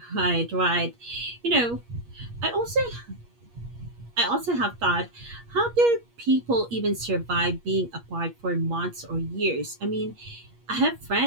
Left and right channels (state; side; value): late; left; 8.4 ms